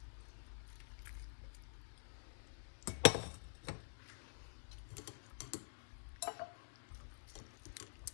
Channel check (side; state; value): right; silent; digital silence